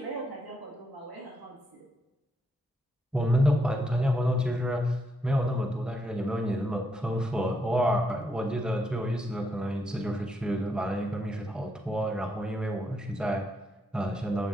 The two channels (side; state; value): both; normal; correlation 0.79